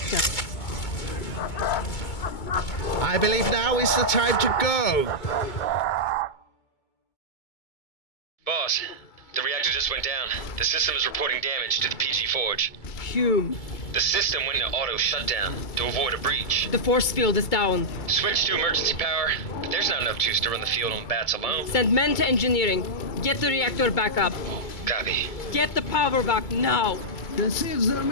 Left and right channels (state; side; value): late; right; 2.2 ms